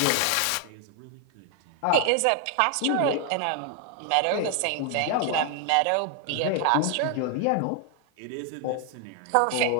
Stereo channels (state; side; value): different; both; correlation 0.00